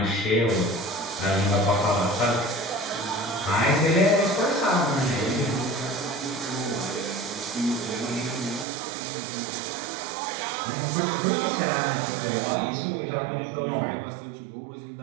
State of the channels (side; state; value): left; drops out; at 8.7 s